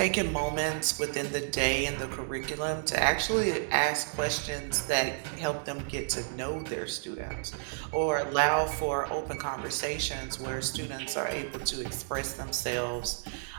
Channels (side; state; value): left; silent; digital silence